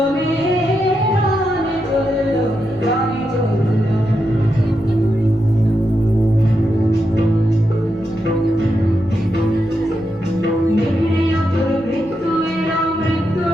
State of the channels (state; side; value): noise; right; rumble, 27 dB below the sound